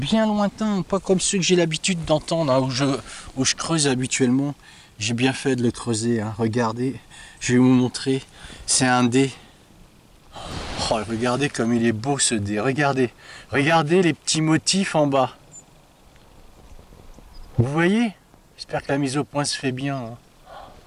lointain, pas comme ceux que j'ai l'habitude d'entendre, hein, où je creuse habituellement. J'ai bien fait de le creuser, hein. Regardez, je vais vous montrer, c'est un dé. Oh, regardez comme il est beau ce dé, regardez les petits motifs en bas. Vous voyez? J'espère que la mise au point se fait bien, hein.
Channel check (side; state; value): both; identical; correlation 1.00